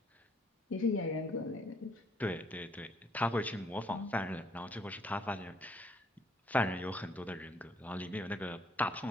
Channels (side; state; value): both; normal; correlation 0.65